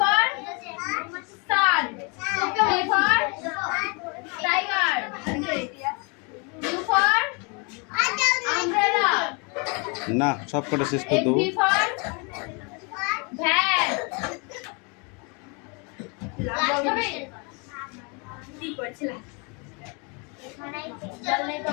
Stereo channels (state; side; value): quieter; right; 33.0 dB